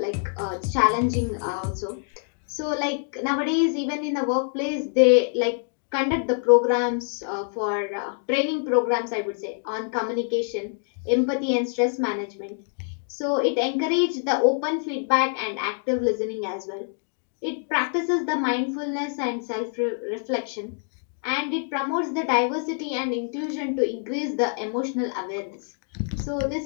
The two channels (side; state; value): right; silent; 61 dB below the other